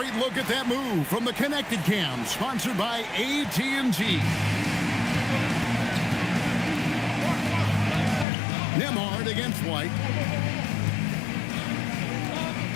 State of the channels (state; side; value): drops out; right; at 8.2 s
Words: look at that move from the Connected Cam, sponsored by AT&T. Nembhard against White.